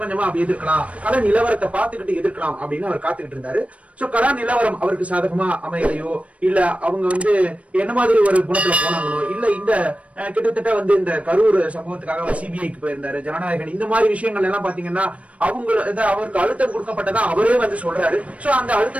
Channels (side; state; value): left; late; 0.064 ms